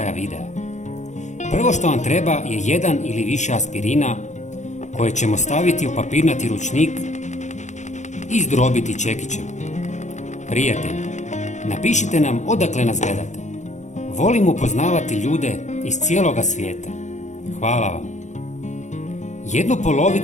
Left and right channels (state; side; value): late; right; 0.34 ms